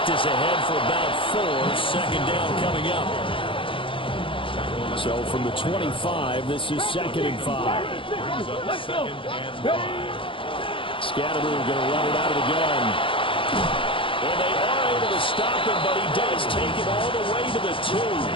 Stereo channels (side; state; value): right; late; 0.25 ms